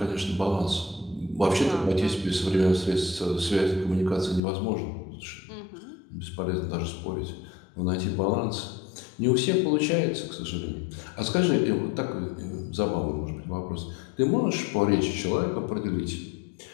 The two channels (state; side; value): drops out; right; at 4.4 s